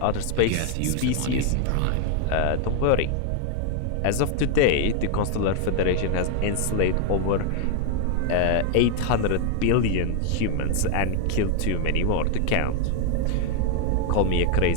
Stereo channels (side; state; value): both; different; correlation 0.00